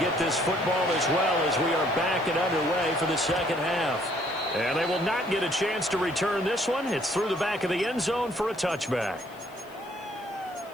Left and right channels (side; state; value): left; noise; hiss, 26 dB below the sound